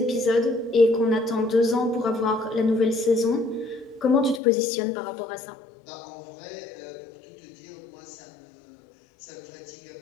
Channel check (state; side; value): drops out; right; at 4.4 s